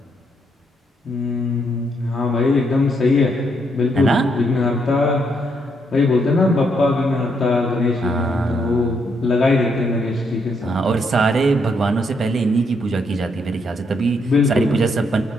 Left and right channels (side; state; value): both; normal; correlation 0.75